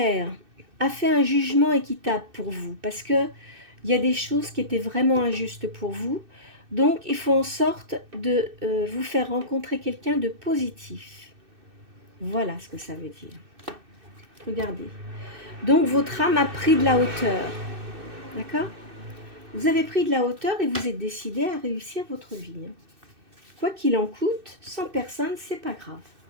a fait un jugement équitable pour vous parce que il y a des choses qui étaient vraiment injustes pour vous. Donc, il faut en sorte de vous faire rencontrer quelqu'un de positif. Voilà ce que ça veut dire. Regardez. Donc, votre âme a pris de la hauteur. D'accord? Vous avez pris de la hauteur et vous êtes décidé à réussir votre vie. Quoi qu'il en coûte, sans personne, c'est pas grave.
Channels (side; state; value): left; late; 2.6 ms